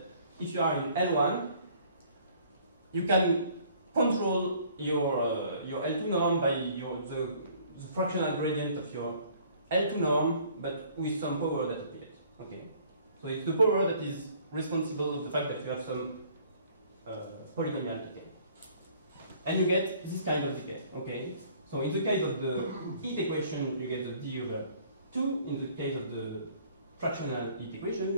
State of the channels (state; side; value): inverted; both; correlation -0.57